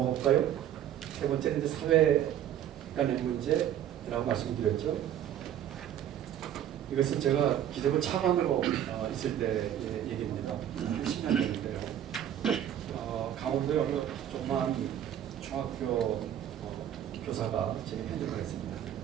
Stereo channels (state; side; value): quieter; left; 10.6 dB